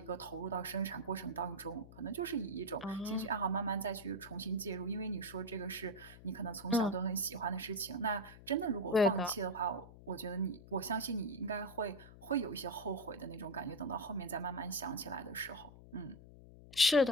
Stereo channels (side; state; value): left; noise; hum, 18 dB below the sound